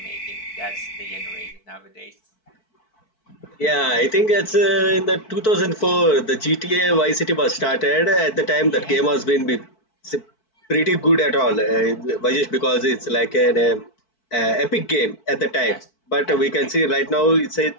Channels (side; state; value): right; late; 4.5 ms